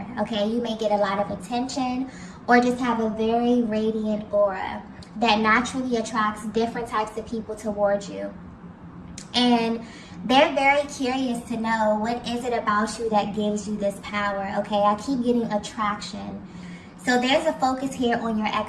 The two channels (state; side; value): identical; both; correlation 1.00